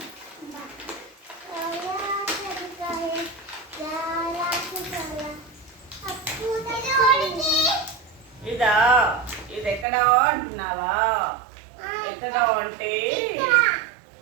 ఇదా? ఇది ఎక్కడా అంటున్నావా? ఎక్కడా అంటే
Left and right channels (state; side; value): drops out; left; at 9.9 s